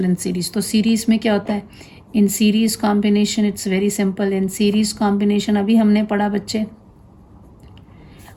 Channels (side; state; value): both; identical; correlation 1.00